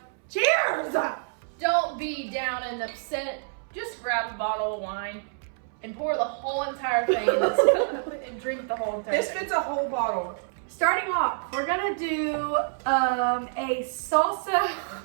Cheers! don't be down and upset. Just grab a bottle of wine and pour the whole entire thing in this cup and drink the whole entire This thing. fits a whole bottle. Starting off, we're gonna do a salsa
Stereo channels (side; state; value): left; silent; 60 dB below the other